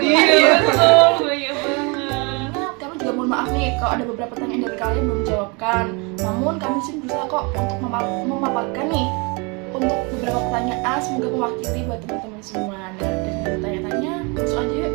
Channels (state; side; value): quieter; left; 30.4 dB